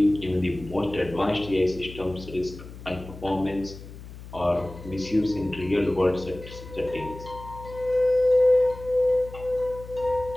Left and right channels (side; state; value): left; noise; hum, 15 dB below the sound